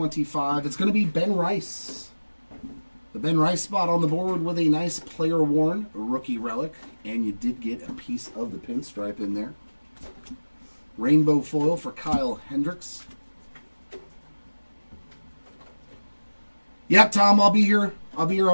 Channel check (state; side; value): inverted; both; correlation -1.00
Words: It's going to be Ben Rice The Ben Rice spot on the board with a nice player-worn rookie relic. And you did get a piece of the pinstripe in there. Rainbow foil for Kyle Hendricks. Yep, Tom, I'll be here. I'll be here